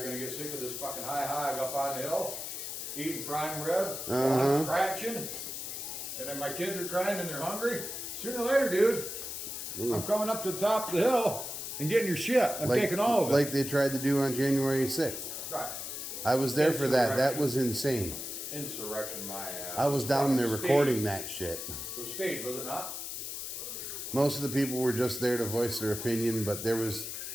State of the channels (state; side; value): noise; left; hiss, 6 dB below the sound